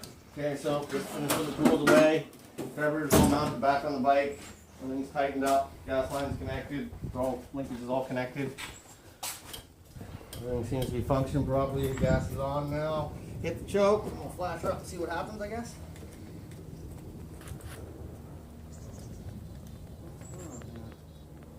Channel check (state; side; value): identical; both; correlation 1.00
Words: Okay, so just finish with the tools away. Carburetor's all mounted back on the bike. Everything's tightened up. Gas line's connected. Linkage is all connected. Everything seems to be functioning properly. The gas is on now. Hit the choke. We'll flash her up and see what happens, I guess.